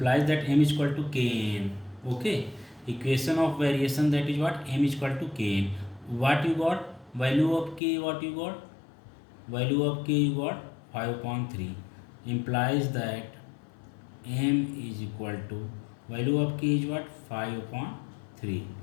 that m is equal to kn. Okay, equation of variation, that is what, m is equal to kn. What you got? Value of k, what you got? Value of k you got 5 upon 3. Implies that m is equal to, value of k is what, 5 upon 3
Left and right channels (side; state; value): right; drops out; at 7.8 s